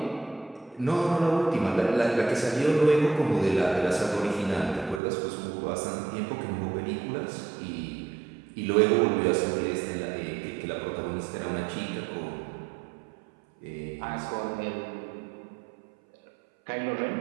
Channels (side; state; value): left; drops out; at 5.0 s